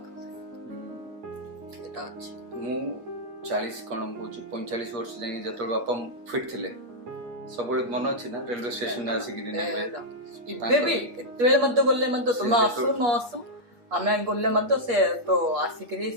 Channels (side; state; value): left; late; 8.4 ms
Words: मु 40 कौन कह 45 वर्ष जाए जो बापा फिट थे सब मन अच्छी ना रेलवे स्टेशन आसिक गले तुम आसु न आसु आम गले से तो आसिक